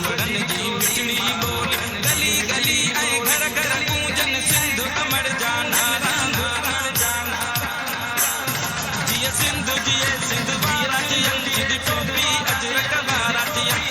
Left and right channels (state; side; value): identical; both; correlation 1.00